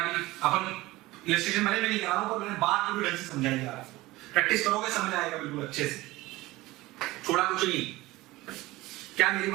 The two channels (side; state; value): left; quieter; 19.1 dB